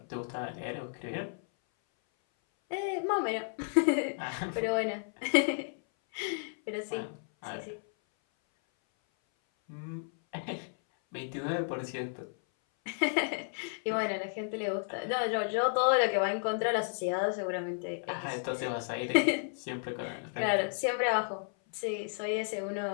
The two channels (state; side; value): silent; right; 56 dB below the other